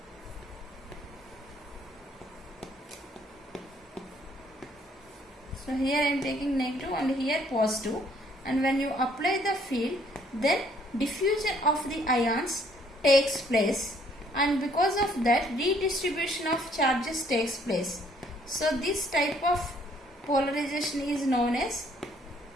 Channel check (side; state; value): both; normal; correlation 0.64